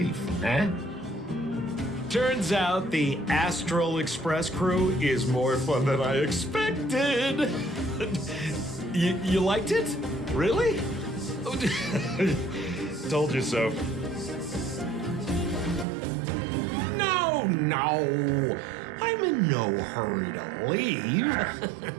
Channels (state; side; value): drops out; left; at 15.9 s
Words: eh? Turns out the Astral Express crew is more fun than I expected. You liked it? Really? Told you so. No. I'm in no hurry to leave.